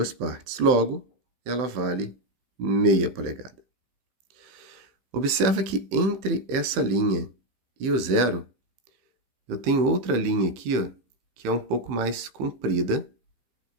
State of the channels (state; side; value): late; left; 15 ms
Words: partes. Logo, ela vale meia polegada. Observa que entre essa linha e o 0, eu tenho outra linha aqui, ó, que é um pouco mais comprida